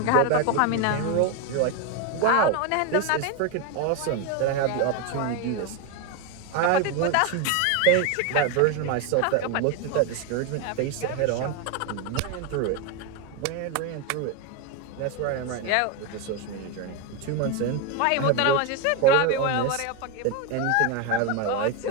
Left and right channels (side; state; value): both; different; correlation 0.02